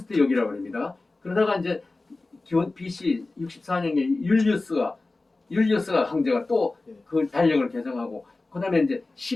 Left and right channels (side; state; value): right; quieter; 3.3 dB